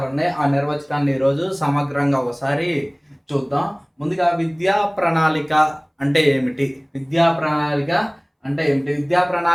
ఉన్నాయి. ఆ నిర్వచనాన్ని ఈరోజు సమగ్రంగా ఒకసారి చూద్దాం. ముందుగా విద్యా ప్రణాళిక అంటే ఏమిటి? విద్యా ప్రణాళిక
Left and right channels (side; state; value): both; identical; correlation 1.00